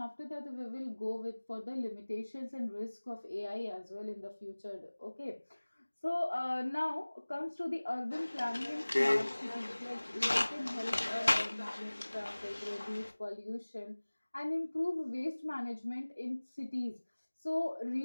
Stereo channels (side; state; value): both; inverted; correlation -1.00